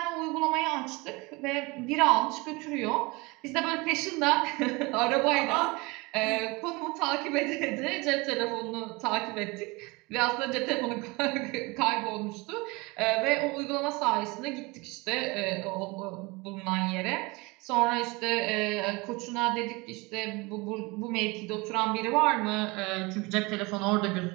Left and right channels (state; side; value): quieter; left; 25.2 dB